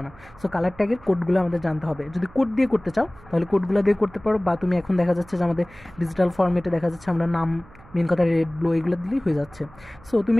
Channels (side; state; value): right; noise; hum, 23 dB below the sound